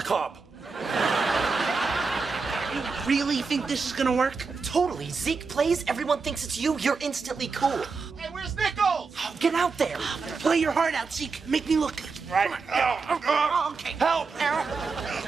cob. You really think this is gonna work? Totally. Zeke plays, everyone thinks it's you, you're instantly cool. Hey, where's Nichols? Oh, get out there. Play your heart out, Zeke. Make me look good. Right. Okay. Help!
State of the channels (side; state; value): left; quieter; 4.7 dB